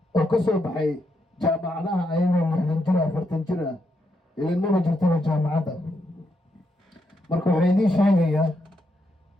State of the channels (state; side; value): normal; both; correlation 0.80